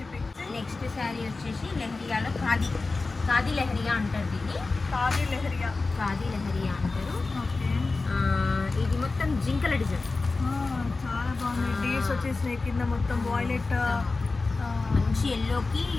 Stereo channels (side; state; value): right; quieter; 3.7 dB